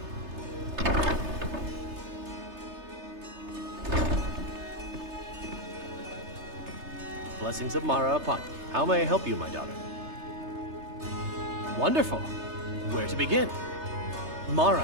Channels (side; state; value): left; late; 3.3 ms